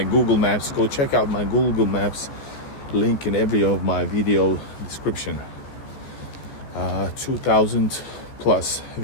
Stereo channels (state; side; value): late; right; 14 ms